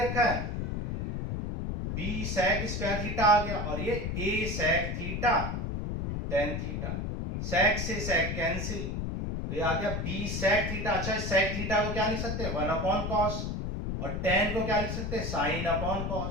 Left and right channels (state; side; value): noise; left; rumble, 3 dB below the sound